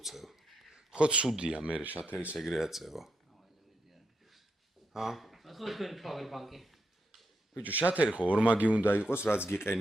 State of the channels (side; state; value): both; normal; correlation 0.82